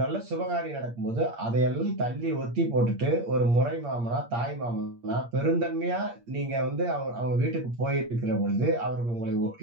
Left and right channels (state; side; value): late; left; 8.6 ms